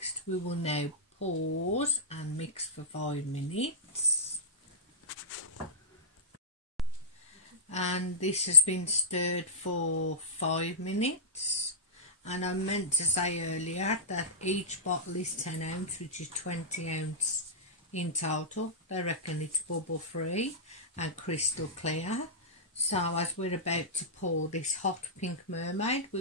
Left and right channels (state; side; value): normal; both; correlation -0.15